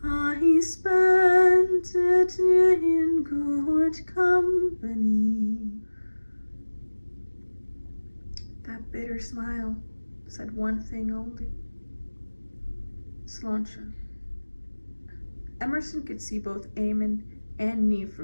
I spent it in good company. That bitter smile said one thing only: Sláinte. Emerson could see both Eamon and Niamh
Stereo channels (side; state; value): both; inverted; correlation -1.00